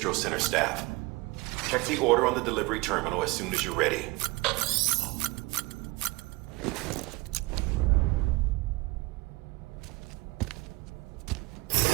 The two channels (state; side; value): quieter; left; 23.0 dB